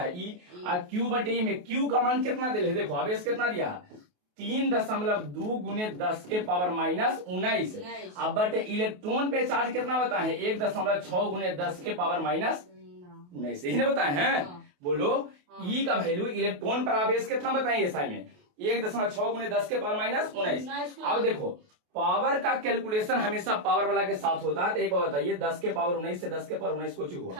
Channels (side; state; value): left; late; 28 ms